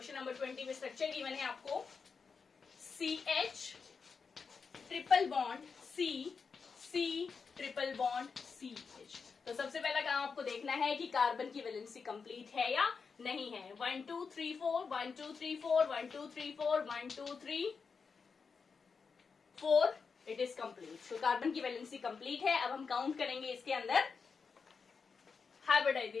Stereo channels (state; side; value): quieter; right; 5.3 dB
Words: नंबर 20 में स्ट्रक्चर गिवन है आपको CH triple bond C C triple bond CH। तो सबसे पहला काम आपको देखना है कि कार्बन की वैलेंसी कंप्लीट है या नहीं है। 1 2 3 4 1 2 3 4 1 2 3 4 1 2 3 4, इट इज कंप्लीट। तो कार्बन की वैलेंसी कंप्लीट है। अब हम काउंट करेंगे इसके अंदर